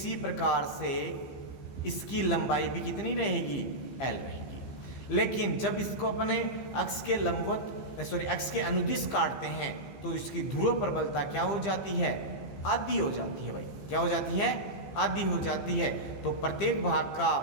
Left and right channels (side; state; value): right; late; 15 ms